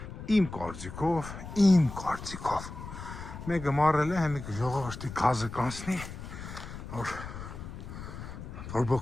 Իմ կարծիքով Մեկը մարել է հեմիկ ժողովրդի գազը կանցնի որ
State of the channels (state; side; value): noise; left; rumble, 10 dB below the sound